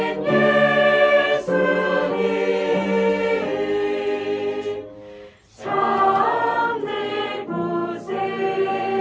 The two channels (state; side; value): identical; both; correlation 1.00